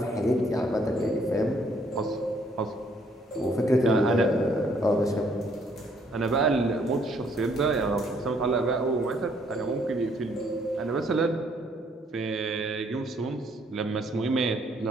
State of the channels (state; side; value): normal; both; correlation 0.67